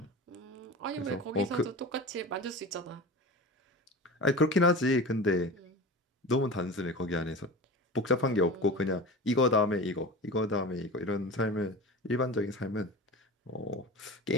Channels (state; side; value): normal; both; correlation 0.32